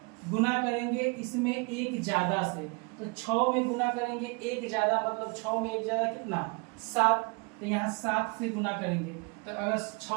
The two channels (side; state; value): left; quieter; 30.9 dB